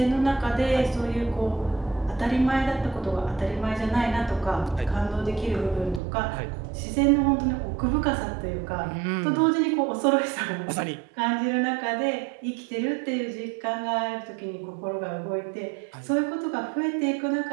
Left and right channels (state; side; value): drops out; left; at 6.0 s